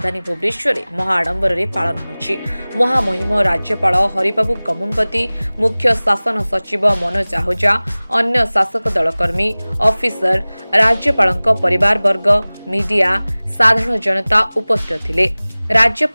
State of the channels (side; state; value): both; inverted; correlation -1.00